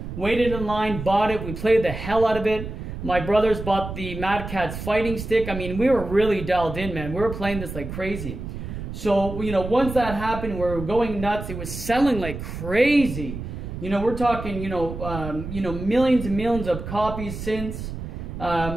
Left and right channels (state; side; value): noise; right; rumble, 8 dB below the sound